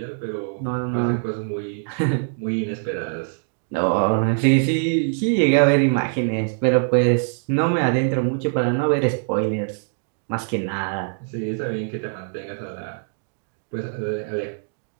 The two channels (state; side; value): silent; left; digital silence